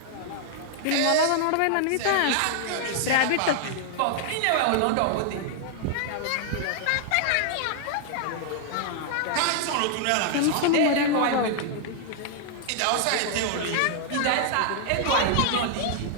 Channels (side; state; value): both; different; correlation 0.00